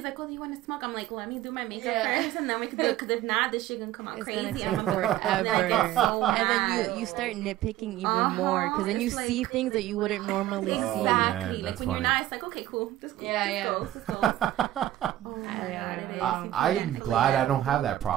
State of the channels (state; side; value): quieter; left; 13.9 dB